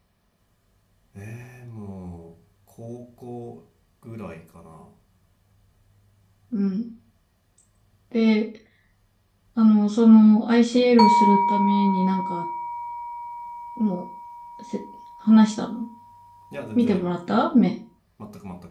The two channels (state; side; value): identical; both; correlation 1.00